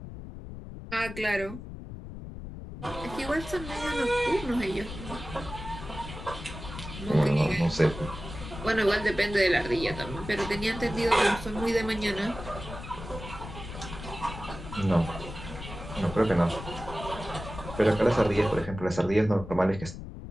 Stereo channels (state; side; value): noise; left; rumble, 11 dB below the sound